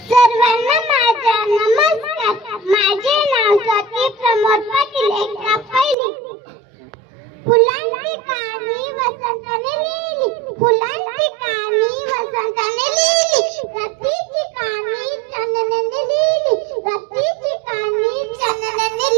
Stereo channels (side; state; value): left; drops out; at 6.0 s